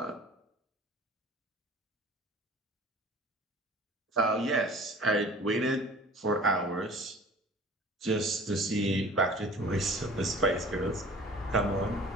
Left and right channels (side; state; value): both; normal; correlation 0.45